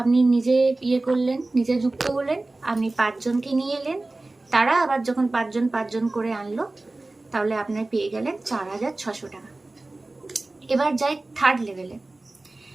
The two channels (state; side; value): quieter; left; 3.0 dB